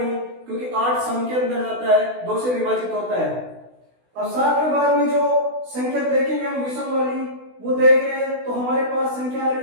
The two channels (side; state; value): left; late; 16 ms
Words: क्योंकि 8 सम के अंदर जाता है, 2 से विभाजित होता है। अब 7 के बाद में जो संख्या देखेंगे हम विषम वाली, वो देख रहे हैं तो हमारे पास संख्या आ